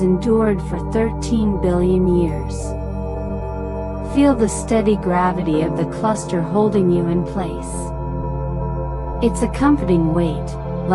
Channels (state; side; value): identical; both; correlation 1.00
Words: endured for 13 billion years. Feel the steady gravity of the cluster holding you in place. It's a comforting weight,